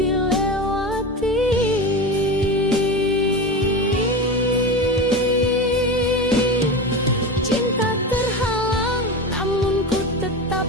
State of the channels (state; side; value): normal; both; correlation 0.24